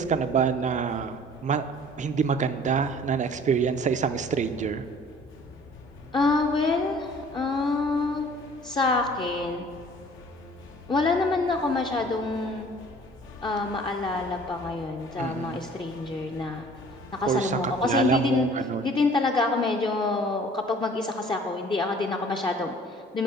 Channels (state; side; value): normal; both; correlation 0.51